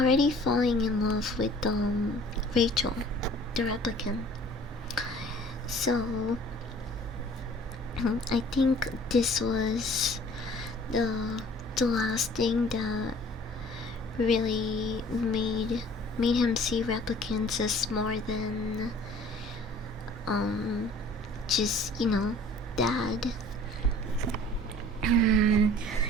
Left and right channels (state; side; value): normal; both; correlation 0.51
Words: falling in love with Rachel, the replicant. So I think this was the last thing that really made him see replicants as more than just, dad.